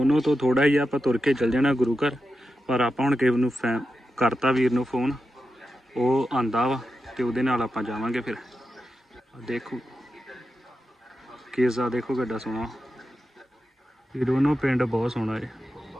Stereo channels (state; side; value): normal; both; correlation 0.89